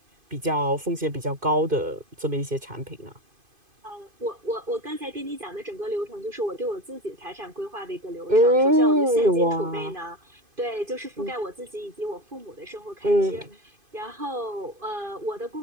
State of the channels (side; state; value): left; late; 2.5 ms